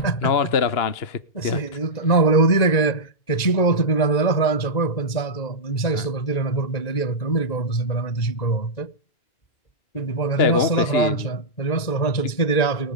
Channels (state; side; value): late; right; 1.9 ms